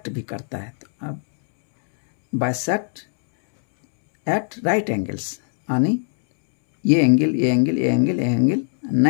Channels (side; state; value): right; silent; 65 dB below the other